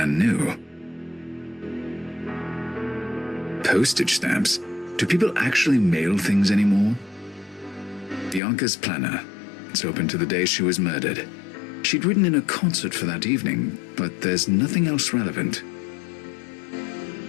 new. Postage stamps? Do people actually mail things anymore? Bianca's planner. It's open to the day she was murdered. She'd written in a concert for that evening, but there's nothing else relevant.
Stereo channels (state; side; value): drops out; right; at 8.4 s